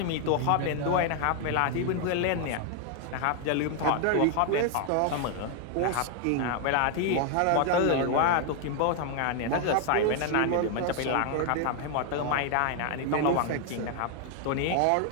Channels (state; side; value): different; both; correlation 0.00